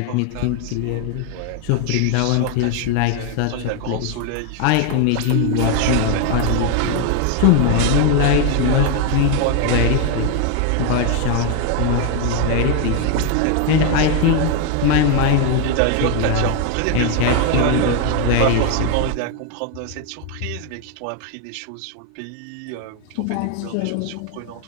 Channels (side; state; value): both; different; correlation 0.01